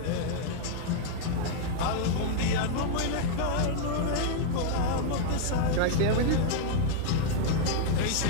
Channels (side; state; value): both; different; correlation -0.01